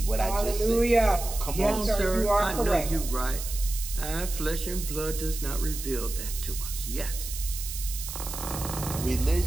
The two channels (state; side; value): noise; right; hiss, 8 dB below the sound